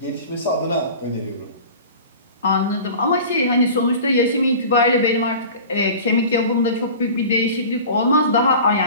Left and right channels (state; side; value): inverted; both; correlation -0.38